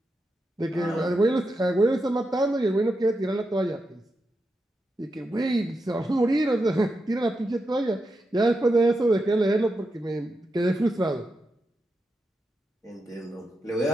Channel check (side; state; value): both; normal; correlation 0.87